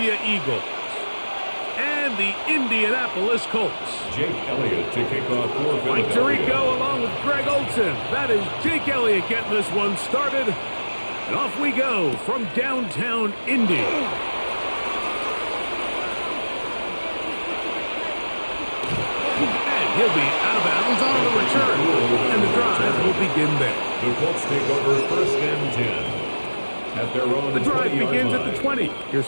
Eagles and the Indianapolis Colts. Jake Elliott to kick off for Philadelphia. Mike Tirico along with Greg Olson. That is Jake Elliott getting this one started. And off we go from downtown Indy. And he'll be out of bounds on the return. And the drive will begin there. The Colts take over first and 10. At their own The drive 20-yard begins line. at the 20. Here's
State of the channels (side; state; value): both; inverted; correlation -1.00